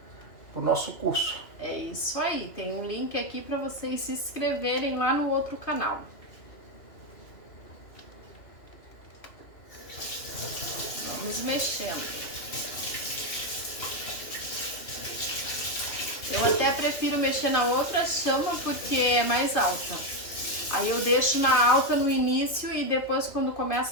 o nosso curso. É isso aí, tem um link aqui para vocês se inscreverem lá no outro canal. Vamos mexendo. Eu até prefiro mexer na outra chama porque é mais alta. Aí eu deixo na alta no início e depois quando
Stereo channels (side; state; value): right; late; 2.6 ms